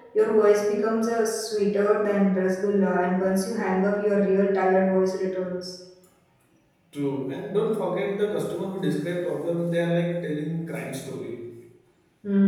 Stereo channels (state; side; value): identical; both; correlation 1.00